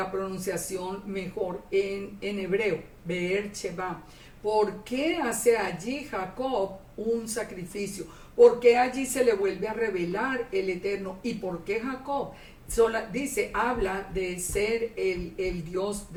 pronunciación mejor en hebreo. Beersheba. ¿Por qué hace allí Jacob un sacrificio? ¿Por qué allí se le vuelve a revelar el Eterno? ¿Y por qué Jacob? Habla de ser el Dios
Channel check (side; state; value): both; identical; correlation 1.00